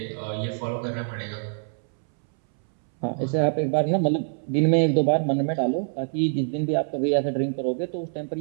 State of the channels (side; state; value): left; silent; 62 dB below the other